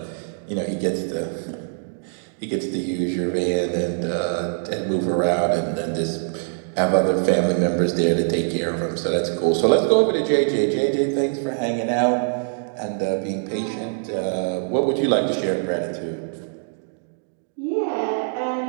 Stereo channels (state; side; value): silent; left; digital silence